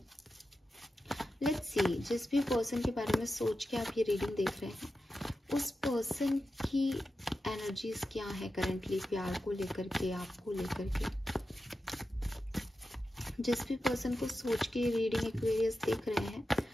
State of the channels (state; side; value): normal; both; correlation 0.91